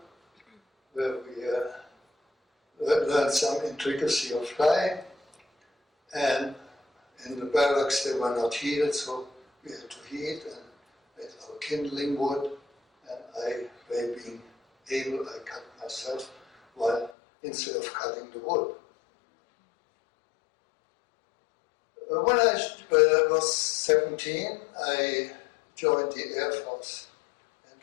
where we learned some intricacy of flying. And in the barracks they were not heated, so we had to heat and made our kindling wood. And I, by being able, I cut myself while instead of cutting the wood. When I was 17, I joined the Air Force. And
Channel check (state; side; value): drops out; right; at 17.1 s